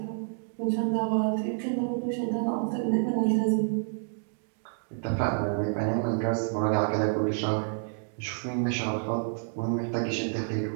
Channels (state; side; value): silent; left; digital silence